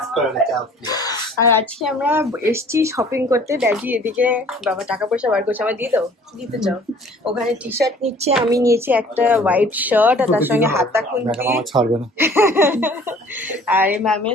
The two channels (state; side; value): normal; both; correlation 0.52